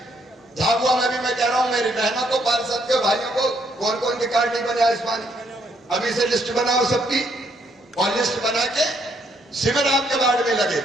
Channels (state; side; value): normal; both; correlation 0.71